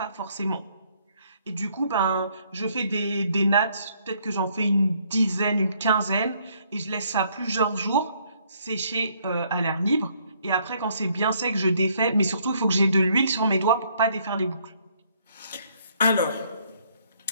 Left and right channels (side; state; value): both; inverted; correlation -0.67